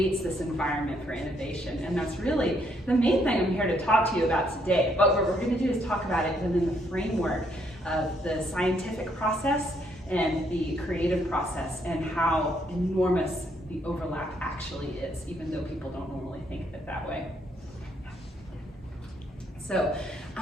this environment for innovation. And that's really the main thing I'm here to talk to you about today. But what we're going to do is talk about it within the framework of the scientific process and the creative process, and how enormous the overlap actually is, even though people don't normally think of it that way. So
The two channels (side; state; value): both; normal; correlation 0.71